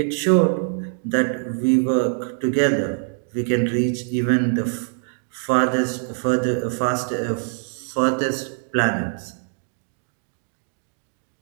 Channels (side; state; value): left; silent; digital silence